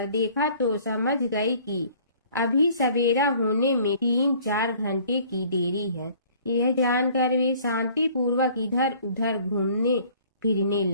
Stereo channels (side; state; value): both; inverted; correlation -0.54